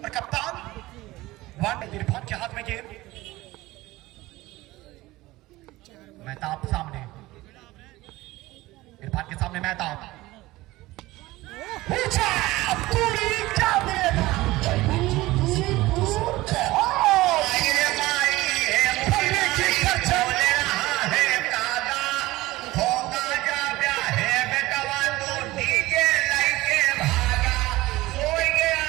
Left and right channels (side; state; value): left; quieter; 18.7 dB